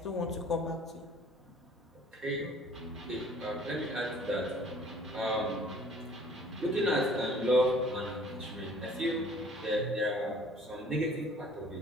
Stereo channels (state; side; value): normal; both; correlation 0.53